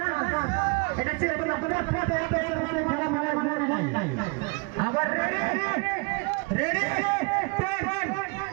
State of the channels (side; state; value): left; quieter; 30.3 dB